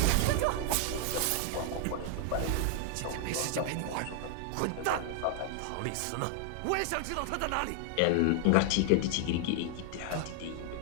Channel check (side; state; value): both; different; correlation 0.00